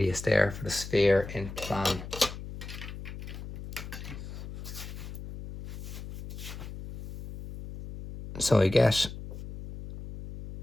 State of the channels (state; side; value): noise; left; hum, 10 dB below the sound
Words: there for the sphere in plan. So I get